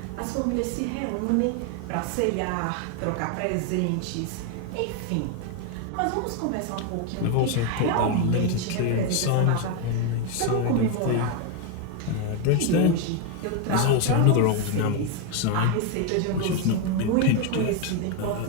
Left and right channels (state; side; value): different; both; correlation 0.01